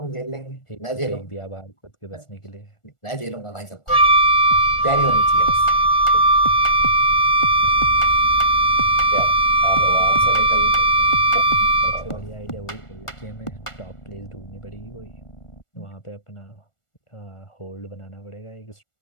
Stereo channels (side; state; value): right; late; 1.4 ms